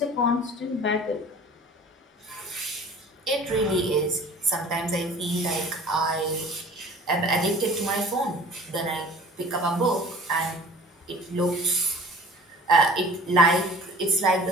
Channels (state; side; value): normal; both; correlation 0.45